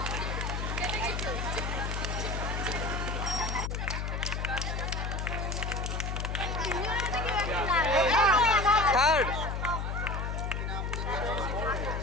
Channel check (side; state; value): left; noise; hum, 2 dB below the sound